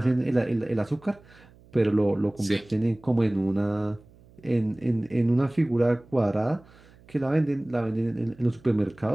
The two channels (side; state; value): right; noise; hum, 26 dB below the sound